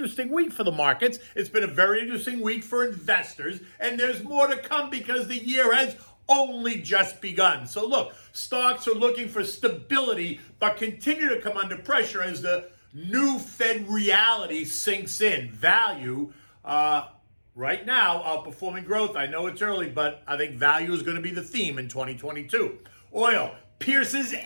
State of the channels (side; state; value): both; inverted; correlation -1.00